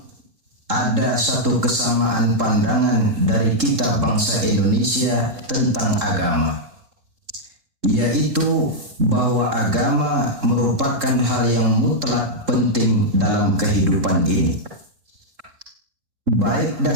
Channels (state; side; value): late; left; 3.7 ms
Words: ada satu kesamaan pandangan dari kita bangsa Indonesia tentang agama, yaitu bahwa agama merupakan hal yang mutlak penting dalam kehidupan ini. Baik